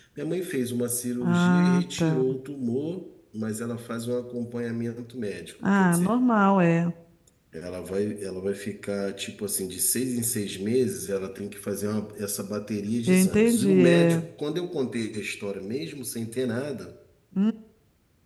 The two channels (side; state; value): both; identical; correlation 1.00